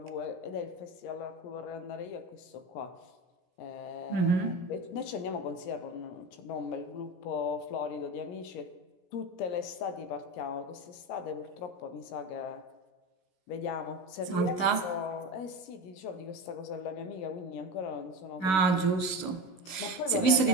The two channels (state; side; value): late; right; 16 ms